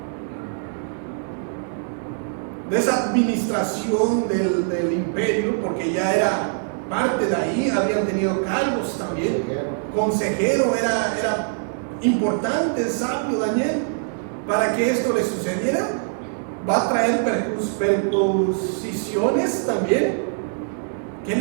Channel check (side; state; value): left; silent; digital silence